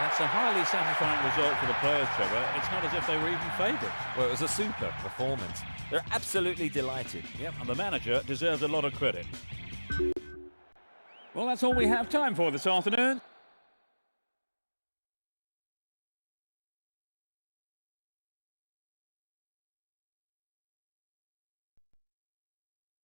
a highly satisfying result for the players, Trevor. It's not as if they were even favourites. Well, it was a super performance. They're absolutely delighted. Yep, and the manager deserves a lot of credit. Well, that's all we have time for this afternoon.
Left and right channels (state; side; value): inverted; both; correlation -1.00